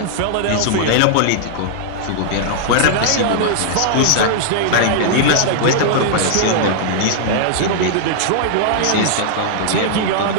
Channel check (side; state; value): both; different; correlation -0.01